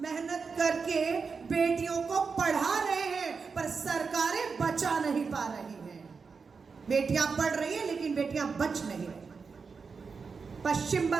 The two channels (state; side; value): quieter; left; 5.1 dB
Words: मेहनत करके बेटियों को पढ़ा रहे हैं पर सरकारें बचा नहीं पा रही हैं। बेटियां पढ़ रही हैं लेकिन बेटियां बच नहीं रही। पश्चिम